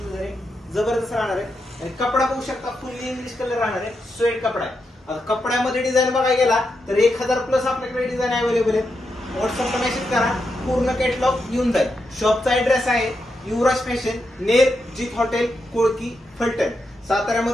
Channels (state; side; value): normal; both; correlation 0.85